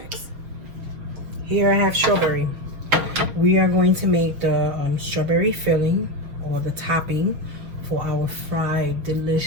Here I have strawberry. We are going to make the strawberry filling, or the topping, for our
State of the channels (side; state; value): left; late; 6.4 ms